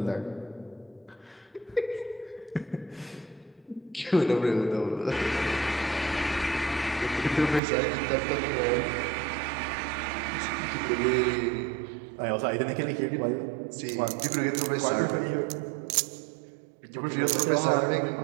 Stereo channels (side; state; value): left; drops out; at 7.6 s